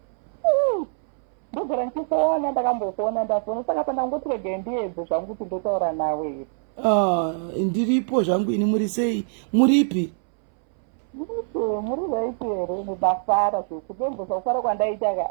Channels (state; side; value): silent; left; 63 dB below the other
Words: Ndiripo zvangu ini muri sei? Muripi? Muri bafara zvekudembosa kufara kwandaita ka.